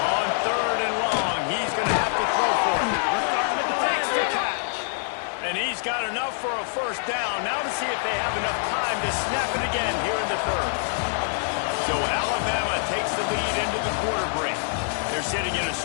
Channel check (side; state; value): right; silent; digital silence